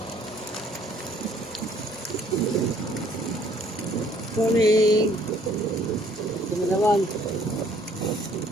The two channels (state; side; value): normal; both; correlation 0.61